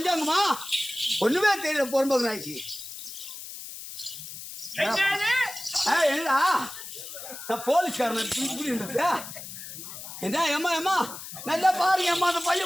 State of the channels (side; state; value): left; noise; hiss, 11 dB below the sound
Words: ஒண்ணுமே தெரியல. பொறம்போக்கு நாய்க்கு என்னடா நான் போலீஸ்காரன் என்ன ஏமா ஏமா நல்லா பாருங்க அம்மா அந்த